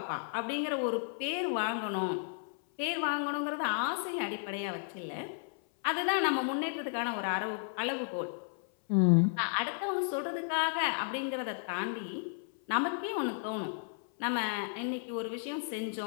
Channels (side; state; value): right; silent; 55 dB below the other